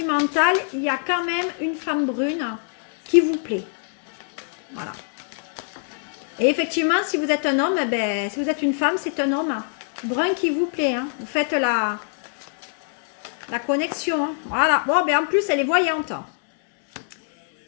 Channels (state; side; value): silent; right; 63 dB below the other